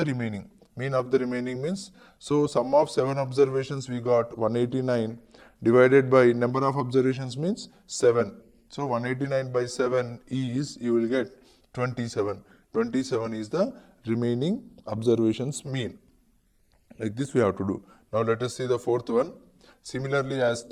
remaining. Mean of the remaining means, so sum of 7 observations we got 189 divided by number of observations means 7. So 189 by 7 is, you will get 27. 27 is the remaining observations mean. Like this we have to do. Now let us see the fourth one. Similarly as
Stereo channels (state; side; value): identical; both; correlation 1.00